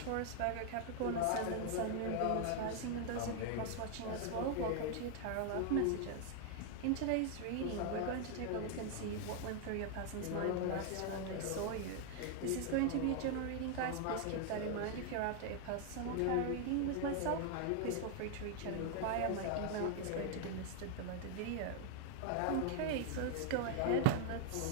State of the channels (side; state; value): both; different; correlation 0.00